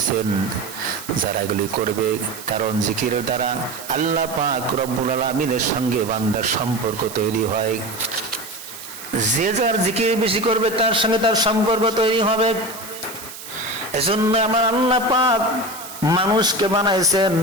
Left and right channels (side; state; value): right; noise; hiss, 13 dB below the sound